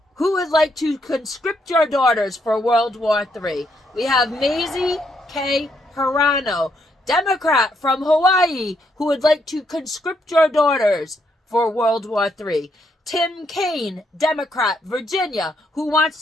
who would like to conscript your daughters for World War III. We have Maisie K. Hirano, Democrat from Hawaii, who would like to conscript your daughters for World War III. Tim Kaine, Democrat, Virginia, who wants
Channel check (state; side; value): normal; both; correlation 0.75